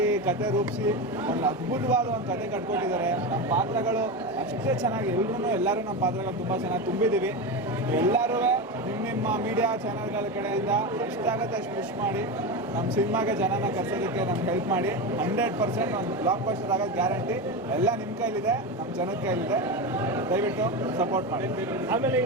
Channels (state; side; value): normal; both; correlation 0.19